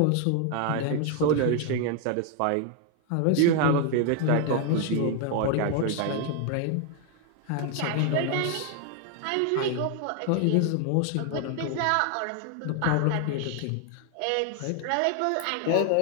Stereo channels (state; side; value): different; both; correlation 0.01